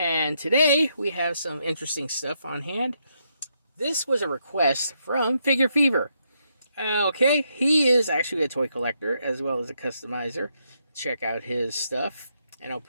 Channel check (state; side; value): inverted; both; correlation -0.78